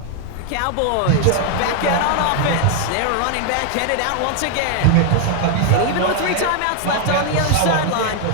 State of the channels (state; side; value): different; both; correlation 0.00